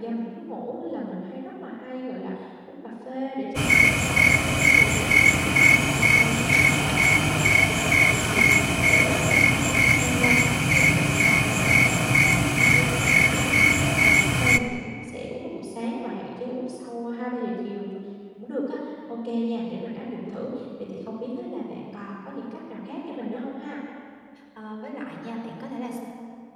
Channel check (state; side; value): identical; both; correlation 1.00